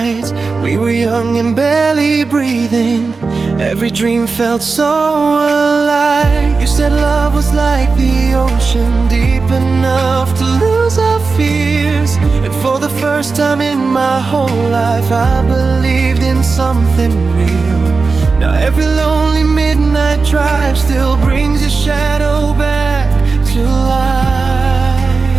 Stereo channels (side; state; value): left; quieter; 4.3 dB